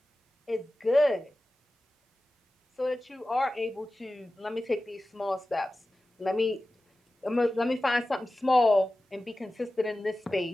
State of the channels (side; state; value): both; normal; correlation 0.95